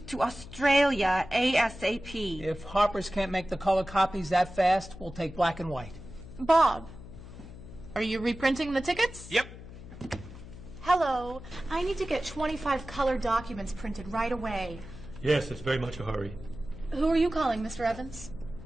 to Australia ASAP. If Harper's can't make the color copies that fast, we'll take black and white. Bob, are you reprinting the tickets? Yep. Hello. I need to get 25 color documents printed right away. Yes, it's very much a hurry. Who are you calling, Mr. Evans?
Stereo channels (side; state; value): left; noise; hum, 15 dB below the sound